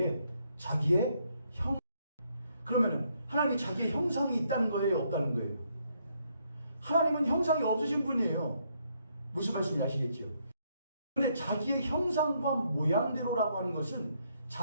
자기의 그러면은 하나님이 자기의 형상이 있다는 거예요, 없다는 거예요? 하나님은 형상이 없으신 분이에요. 무슨 말씀인지 아시겠죠? 그런데 자기의 형상과 모양대로라고 하는 것은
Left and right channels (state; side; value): inverted; both; correlation -0.73